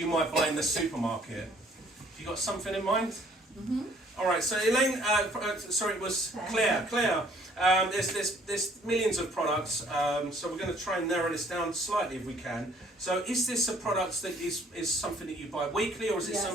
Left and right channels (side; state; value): both; normal; correlation 0.60